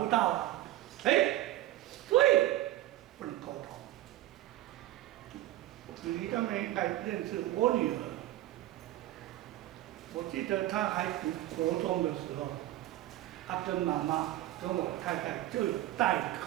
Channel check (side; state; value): left; quieter; 15.1 dB